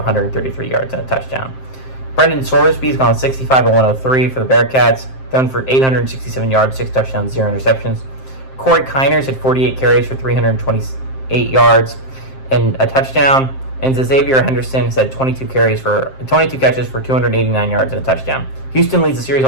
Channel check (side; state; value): right; late; 7.6 ms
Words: yards and a touchdown. Brendan Sorsby's gone 65-103 for the Bearcats, thrown for 867 yards, 6 touchdowns, 0 interceptions. Corey Kiners had 48 carries for 328 yards and a touchdown, and Xavier Henderson has had 22 catches for 289 yards and a touchdown. Houston leads the series